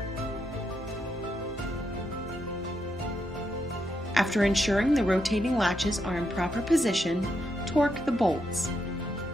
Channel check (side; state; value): both; normal; correlation 0.81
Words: After ensuring the rotating latches are in proper position, torque the bolts.